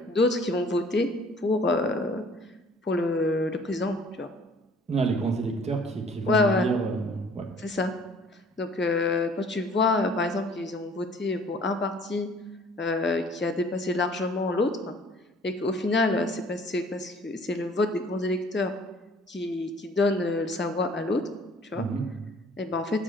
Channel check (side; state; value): both; normal; correlation 0.54